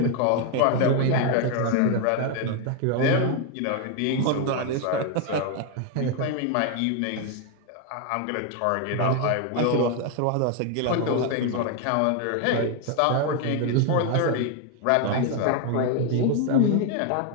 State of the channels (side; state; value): both; different; correlation 0.01